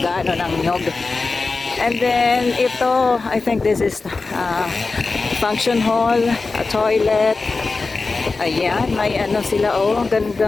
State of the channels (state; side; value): quieter; right; 3.9 dB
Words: ng nyog. And then ito, I think this is function hall, a toilet. Ayan, may ano sila, oh, ang